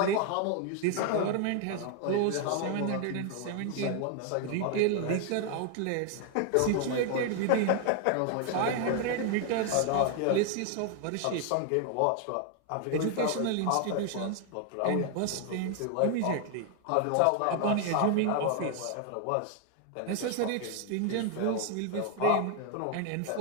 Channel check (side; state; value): both; different; correlation 0.00